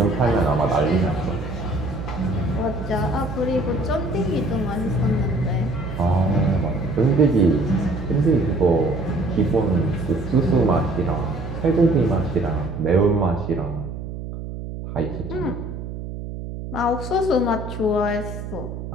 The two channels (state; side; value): noise; right; hum, 8 dB below the sound